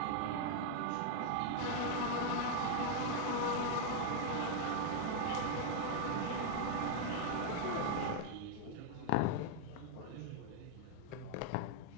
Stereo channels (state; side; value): different; both; correlation 0.00